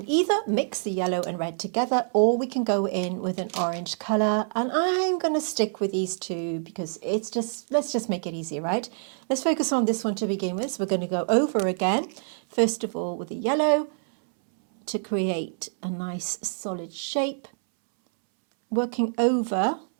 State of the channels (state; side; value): silent; left; 61 dB below the other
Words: either mix the yellow and red together, or we can go in with an orange colour. And I'm going to stick with these 2 because let's just make it easy, right? Let's focus on this one to begin with. So we're going to go over again, first of all with the yellow to create a nice solid shape, working over